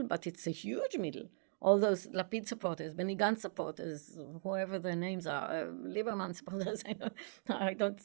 but it's a huge middle. All those Lapid supporters, Benny Gantz supporters, whoever their names are, Lieberman supporters, I don't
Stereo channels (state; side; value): silent; left; digital silence